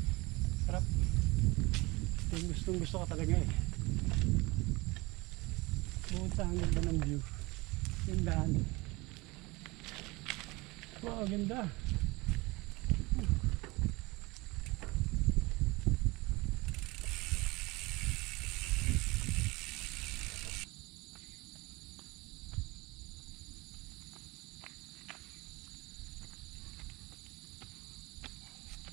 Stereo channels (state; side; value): quieter; left; 23.1 dB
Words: Sarap. Yung gusto ko talaga eh. Bukod sa ang ganda ng view. Yung daan. Wow, ganda.